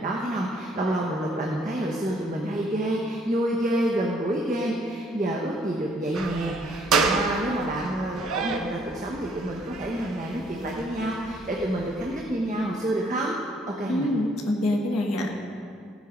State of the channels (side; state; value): both; normal; correlation 0.65